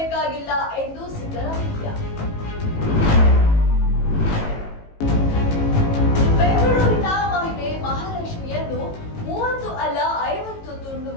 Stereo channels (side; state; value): right; late; 18 ms